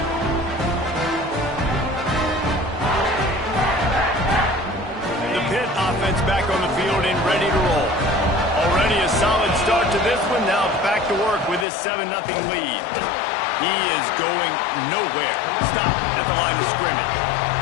Offense back on the field and ready to roll. Already a solid start to this one. Now back to work with this 7-0 lead. He is going nowhere. Stop at the line of scrimmage.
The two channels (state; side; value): drops out; right; at 11.7 s